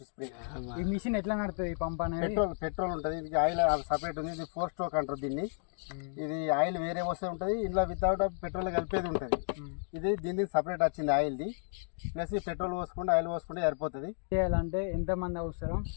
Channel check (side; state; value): right; silent; 56 dB below the other